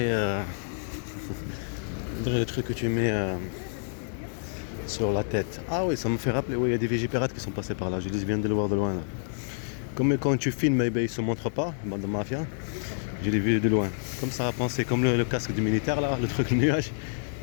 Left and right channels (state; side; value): silent; right; digital silence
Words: le truc que tu mets sur la tête. Ah oui, ça me fait rappeler, oui, il y a des Vigipirates qui sont passés par là. Je viens de le voir de loin là. Comme quand tu filmes, eh bien, ils ne se montrent pas, bande de mafia. Je l'ai vu de loin. Comme ça a pensé, comme le casque du militaire là, le truc le nuage.